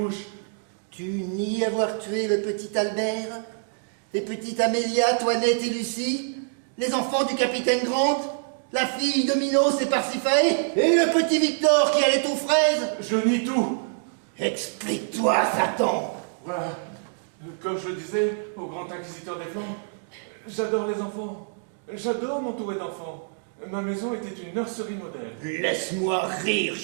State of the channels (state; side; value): silent; left; digital silence